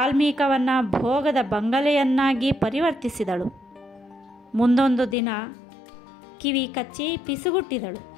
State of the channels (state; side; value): drops out; right; at 5.2 s